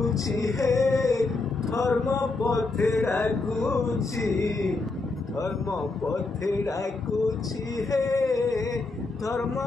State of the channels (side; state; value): right; quieter; 3.5 dB